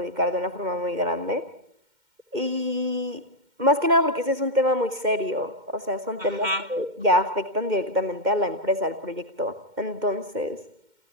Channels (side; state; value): left; late; 2.1 ms